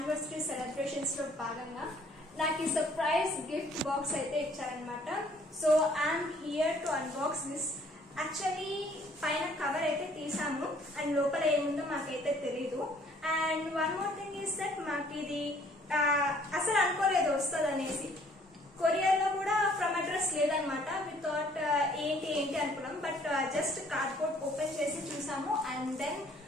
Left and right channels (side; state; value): both; normal; correlation 0.60